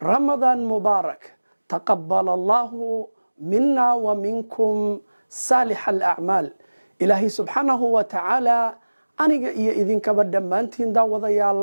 رمضان مبارك تقبل الله منا ومنكم صالح الأعمال إلهي سبحانه وتعالى aniga iyo idinkaba dhammaantiin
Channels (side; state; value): both; inverted; correlation -1.00